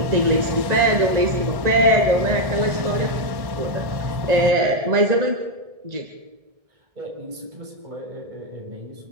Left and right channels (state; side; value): late; left; 1.7 ms